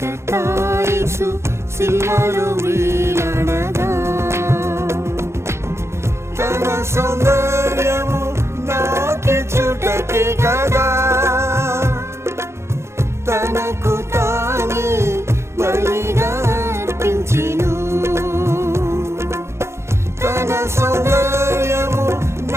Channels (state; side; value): late; left; 0.13 ms